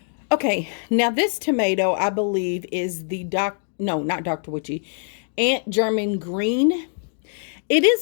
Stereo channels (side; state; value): right; silent; digital silence